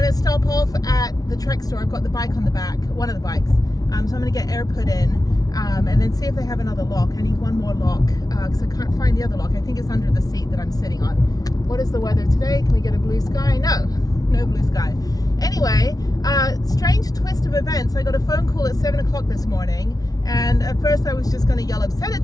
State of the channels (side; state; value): right; late; 0.18 ms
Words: to stop off at the Trek store. I've got the bike on the back, one of the bikes. So I'm going to get air put in and then see if they have another lock. I need one more lock because I can't find the other lock. I think it's under the seat that I'm sitting on. What is the weather today? Can we get a blue sky? No blue sky. Anyway, strange twist of events. I got a phone call at 7 o'clock this morning, and at first I was just going to yell